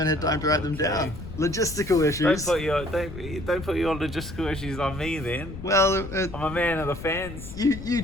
had time to write them down. Logistical issues. Don't put your logistical issues on me then. Well, I'm a man of the fans. You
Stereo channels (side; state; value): left; noise; rumble, 11 dB below the sound